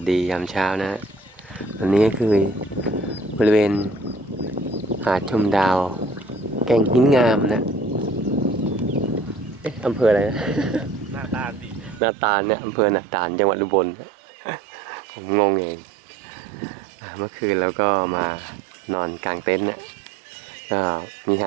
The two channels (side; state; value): left; drops out; at 12.0 s